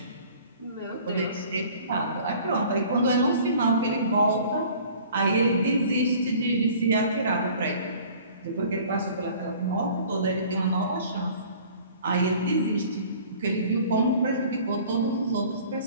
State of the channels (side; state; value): both; inverted; correlation -0.49